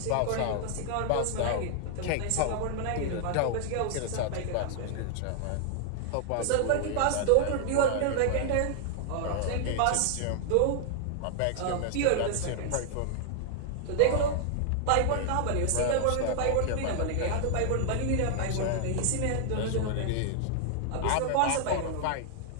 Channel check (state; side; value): different; both; correlation 0.00